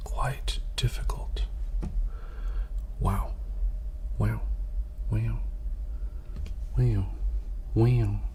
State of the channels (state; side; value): identical; both; correlation 1.00